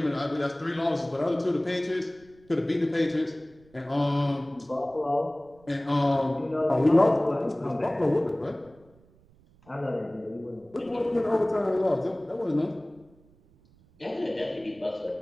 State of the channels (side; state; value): right; noise; rumble, 29 dB below the sound